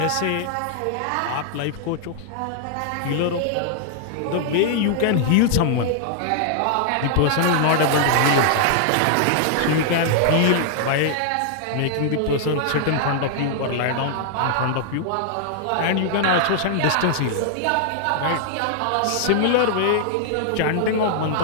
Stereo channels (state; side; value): different; both; correlation -0.01